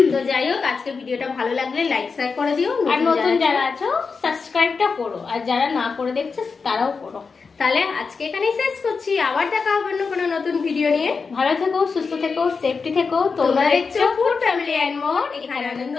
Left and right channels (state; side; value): quieter; right; 4.9 dB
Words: তো যাই হোক, আজকের ভিডিওটা ভালো লাগলে লাইক শেয়ার করে দিও, আর নতুন যারা আছো সাবস্ক্রাইবটা করো, আর যারা না করে দেখছো তারাও করো। তাহলে আজকে এখানেই শেষ করছি, আবার দেখা হবে অন্য কোনো নতুন ভিডিও নিয়ে। ভালো থেকো, সুস্থ থেকো, সেফটি থেকো। তোমরা দেখছো ফুড ফ্যামিলি এন্ড মোর, এখানে আনন্দ